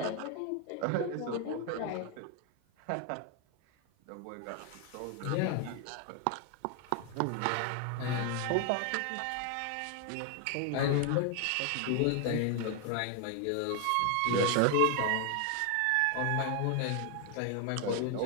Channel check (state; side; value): different; both; correlation 0.00